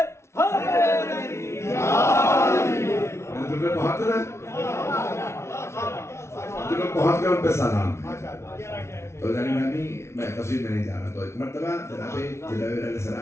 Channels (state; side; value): late; right; 0.13 ms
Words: تمہیں بہت رہا تمہیں بہت کر ان پہ سلام. تو میں تفصیل میں نہیں جا رہا. تو ایک مرتبہ جناب علیہ